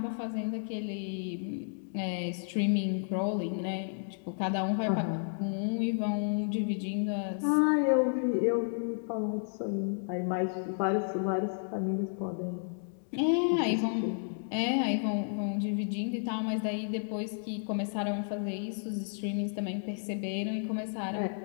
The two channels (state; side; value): silent; right; digital silence